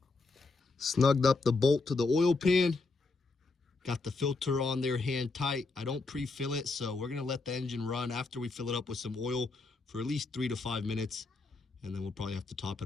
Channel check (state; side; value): quieter; right; 3.7 dB